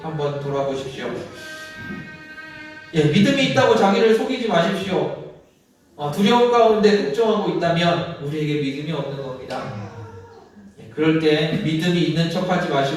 한번 돌아보십시오. 믿음이 있다고 자기를 속이지 마십시오. 두려움 가운데 걱정하고 있다면 우리에게 믿음이 없는 겁니다. 그럴 때 믿음이 있는 척하지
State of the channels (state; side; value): identical; both; correlation 1.00